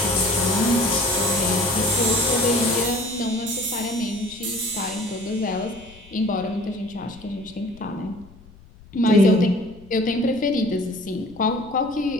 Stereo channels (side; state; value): left; noise; rumble, 23 dB below the sound